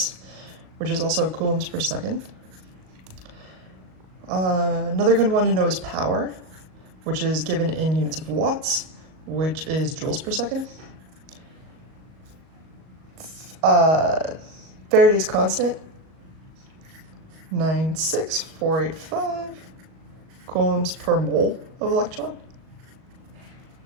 which is also coulombs per second. Another good one to know is power, which is given in units of watts, which is joules per second. Faraday's constant, 96485 coulombs per mole of electron.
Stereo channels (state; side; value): late; left; 38 ms